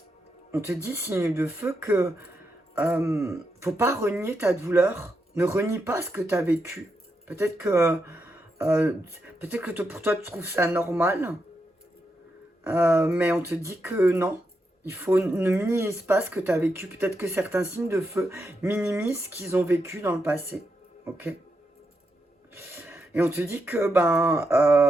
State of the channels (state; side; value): normal; both; correlation 0.84